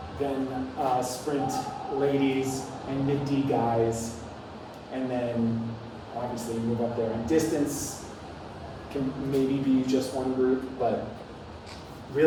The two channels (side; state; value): both; identical; correlation 1.00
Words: then sprint ladies, and mid-D guys, and then obviously move up there. And distance can maybe be just one group, but